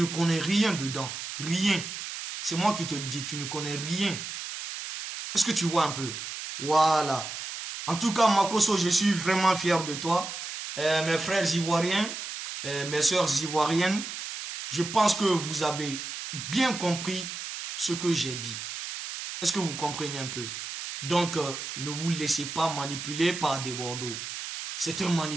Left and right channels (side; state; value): right; noise; hiss, 7 dB below the sound